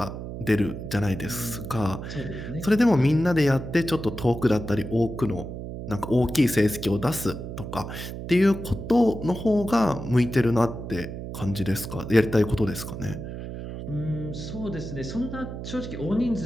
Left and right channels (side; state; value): right; noise; hum, 8 dB below the sound